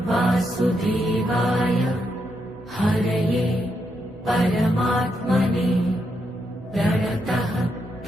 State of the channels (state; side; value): normal; both; correlation 0.81